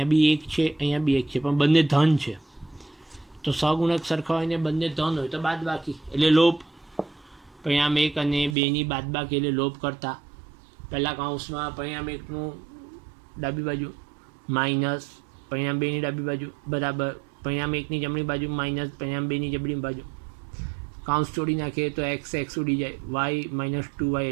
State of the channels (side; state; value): left; drops out; at 8.6 s